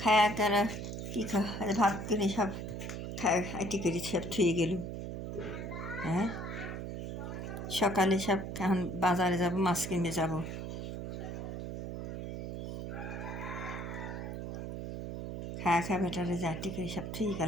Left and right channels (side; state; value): right; noise; hum, 6 dB below the sound